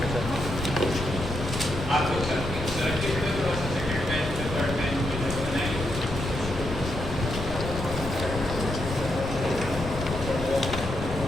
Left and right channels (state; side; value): noise; left; rumble, 6 dB below the sound